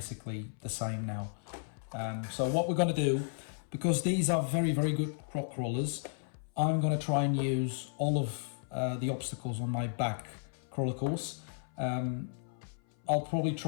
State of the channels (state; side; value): silent; right; 55 dB below the other